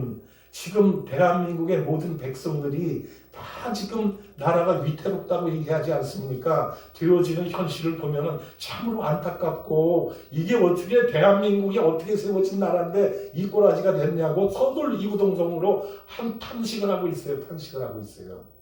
지금 대한민국의 모든 백성들이 다 지금 나라가 위태롭다고 얘기하지 않습니까? 되어지는 현실을 보면은 참으로 안타깝고, 이게 어떻게 대한민국이 어떻게 세워진 나라인데 이 꼬라지가 됐냐고 서둘 이구동성으로 탄식을 하고 있어요. 탄식을 하고 있어요.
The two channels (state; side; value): identical; both; correlation 1.00